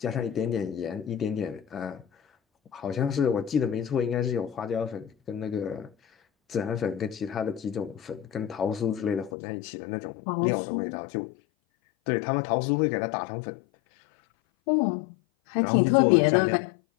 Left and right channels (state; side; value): drops out; right; at 9.3 s